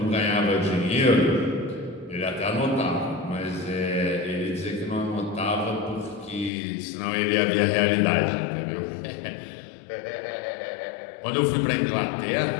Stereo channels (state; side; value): drops out; right; at 6.5 s